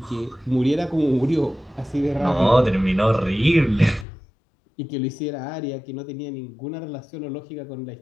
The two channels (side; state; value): right; drops out; at 4.0 s